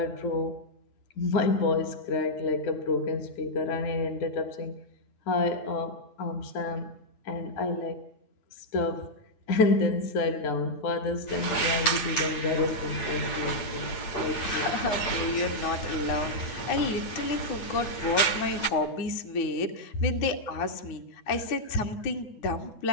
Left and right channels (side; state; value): right; late; 8.8 ms